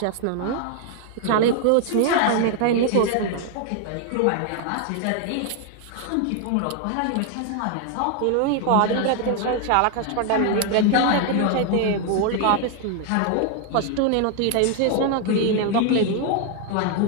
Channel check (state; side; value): different; both; correlation 0.00